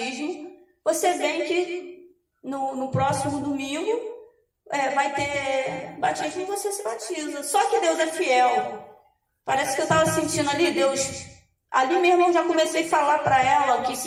Você vem que no próximo domingo vai ter batismo e você se batiza. Só que Deus é fiel. Parece que eu estava sentindo ali, Deus... Ali mesmo eu já comecei a falar para ela o que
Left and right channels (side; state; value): both; identical; correlation 1.00